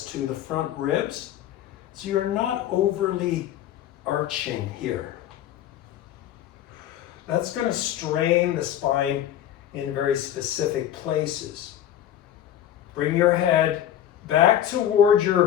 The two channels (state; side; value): quieter; right; 11.3 dB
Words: to the front ribs so you're not overly arching here. That's going to strain the spine in very specific places. Bring your head back toward